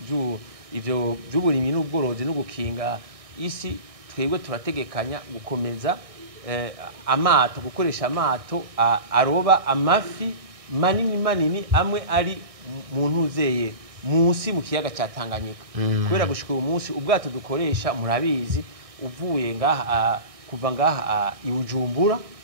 by'uburimyi n'ubworozi no gukinga isi twebwe turategekanya gukomeza amato gukoresha amato aroba amafi manini amwe ari mu ntuzeye munsi mu kiyaga cya Tanganyika kubera gushika uyu munsi ubwato dukoresha murabizi uvuye ngaha kuva ngaha i Bujumbura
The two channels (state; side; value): late; left; 1.6 ms